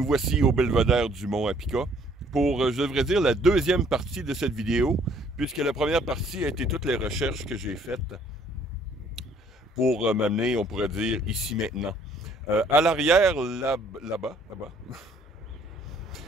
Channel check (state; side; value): normal; both; correlation 0.61